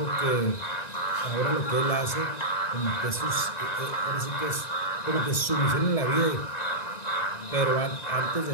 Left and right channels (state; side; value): late; right; 1.6 ms